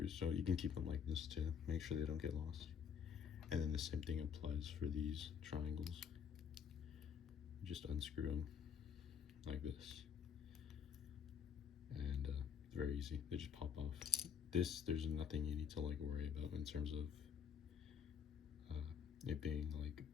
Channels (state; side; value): quieter; right; 7.4 dB